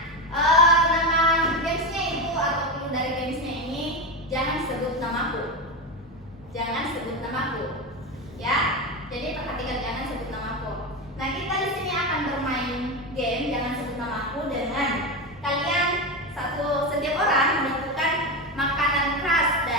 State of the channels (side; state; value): both; normal; correlation 0.16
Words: nama gamesnya Ibu atau clue dari gamesnya ini jangan sebut namaku. Jangan sebut namaku. Ya. Jadi perhatikan jangan sebut namaku. Nah, kita di sini akan bermain game jangan sebut namaku dengan kalian setiap orang menentukan makanan khas